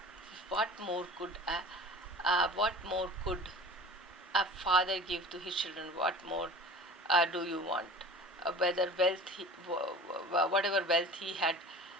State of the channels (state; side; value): normal; both; correlation 0.40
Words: What more could a father give to his children? What more do you want? Whatever wealth he had,